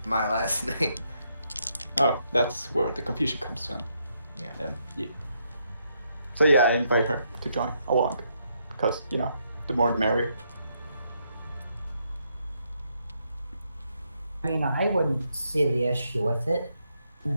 my last name. Oh, that's where the confusion comes from. Yeah. Yeah. So yeah, I invite her to join along, because the more the merrier. I mean, I wouldn't see the issue with it.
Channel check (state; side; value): inverted; both; correlation -0.77